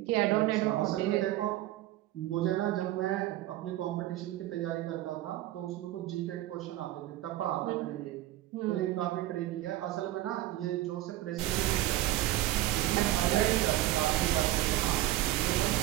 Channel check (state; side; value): quieter; left; 15.5 dB